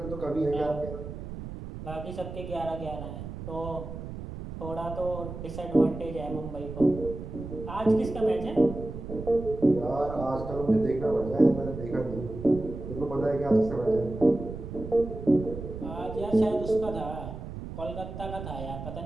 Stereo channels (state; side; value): noise; right; rumble, 9 dB below the sound